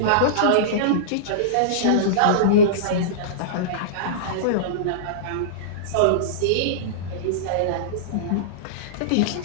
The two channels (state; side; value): different; both; correlation -0.04